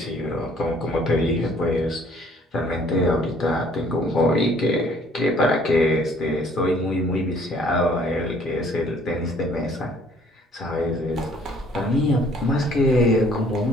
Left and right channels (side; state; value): both; normal; correlation 0.58